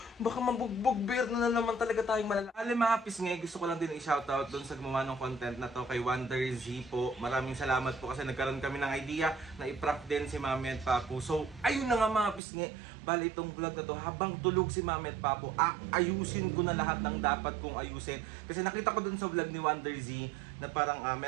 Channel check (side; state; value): left; drops out; at 12.4 s